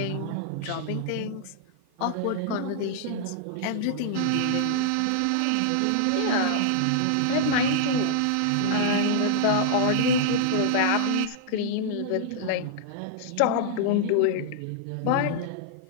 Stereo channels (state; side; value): different; both; correlation -0.01